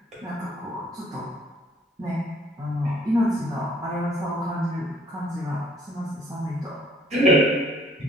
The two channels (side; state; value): both; normal; correlation 0.60